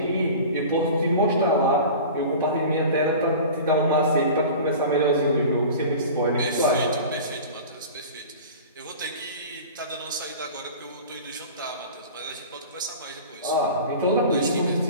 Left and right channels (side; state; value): both; inverted; correlation -0.37